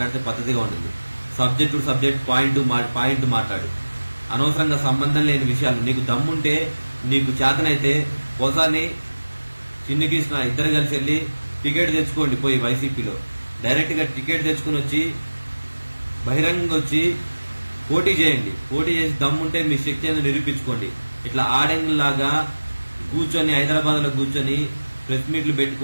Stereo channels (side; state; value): both; inverted; correlation -1.00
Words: పద్ధతిగా ఉంటుంది. సబ్జెక్ట్ పాయింట్ మాట్లాడు. అనవసరంగా సంబంధం లేని విషయాలు. నీకు దమ్ముంటే, నీకు చేతనైతే పోసాని చిన్ని కృష్ణ ఇద్దరు కలిసి వెళ్ళి టికెట్ తెచ్చుకోండి, పోయి వైసీపీలో డైరెక్ట్ గా టికెట్ తెచ్చుకుని వచ్చి బహిరంగంగా వచ్చి పోటీ చేయండి, పోటీ చేసి దమ్ముంటే మీ శక్తి అనేది నిరూపించుకోండి. ఇట్లా ఆడంగిలాగా కూర్చొని హైదరాబాద్ లో కూర్చొని ప్రెస్ మీట్లు